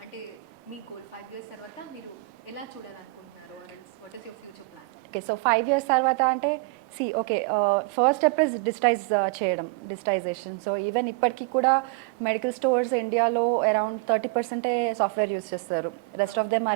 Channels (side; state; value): left; quieter; 25.8 dB